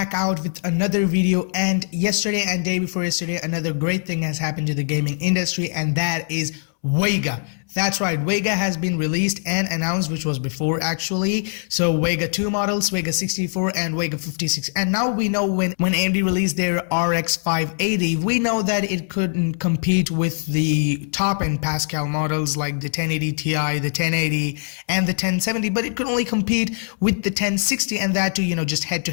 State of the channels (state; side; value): silent; right; 64 dB below the other